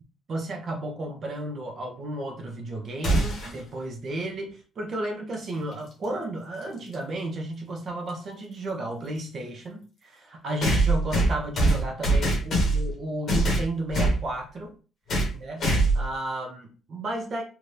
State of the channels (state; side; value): normal; both; correlation 0.72